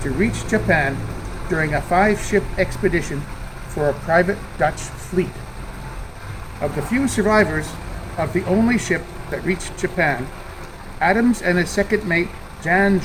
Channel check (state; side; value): identical; both; correlation 1.00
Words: to reach Japan during a 5-ship expedition for a private Dutch fleet. Of the few survivors of the only ship that reached Japan, Adams and his second mate, Jan